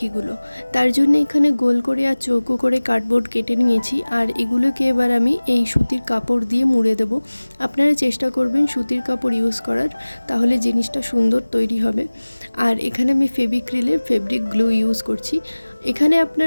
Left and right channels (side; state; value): both; inverted; correlation -1.00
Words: তার জন্য এখানে গোল করে আর চৌকো করে কার্ডবোর্ড কেটে নিয়েছি, আর এগুলোকে এবার আমি এই সুতির কাপড় দিয়ে মুড়ে দেব। আপনারা চেষ্টা করবেন সুতির কাপড় ইউজ করার, তাহলে জিনিসটা সুন্দর তৈরি হবে। আর এখানে আমি ফেভিক্রিলের ফেব্রিক গ্লু ইউজ করছি। এখানে